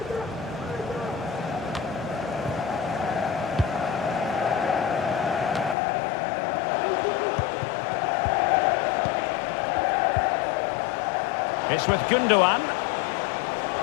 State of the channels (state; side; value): drops out; right; at 5.8 s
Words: It's with Gundogan.